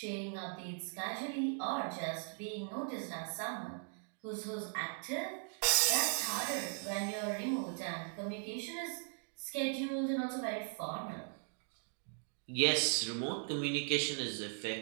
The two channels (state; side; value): silent; left; 52 dB below the other